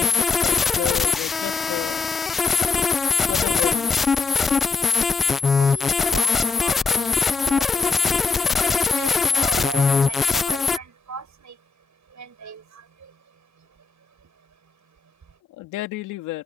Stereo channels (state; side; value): quieter; right; 4.6 dB